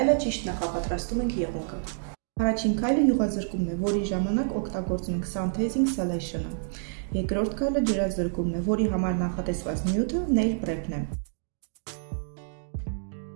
ճիշտ նախապատրաստում ենք եղունգը։ Առաջին քայլը յուղազրկումն է, որի ժամանակ օգտագործում ենք Synthesing Selection-ը։ Երկրորդ քայլը ջրազրկումն է, որի համար նախատեսված նյութը nail prep-ն է։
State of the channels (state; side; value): silent; left; digital silence